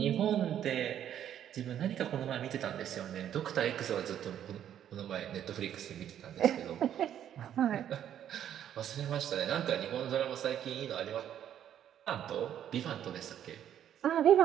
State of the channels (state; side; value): quieter; left; 10.2 dB